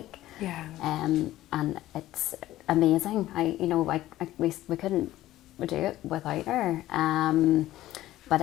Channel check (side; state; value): right; quieter; 15.0 dB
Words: Yeah. And it's amazing. We couldn't do it without her. But